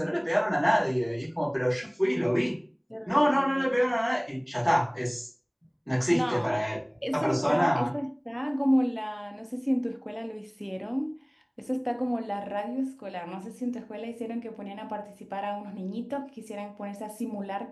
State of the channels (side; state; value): both; identical; correlation 1.00